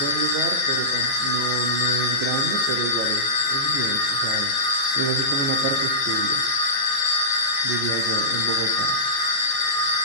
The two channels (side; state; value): right; late; 15 ms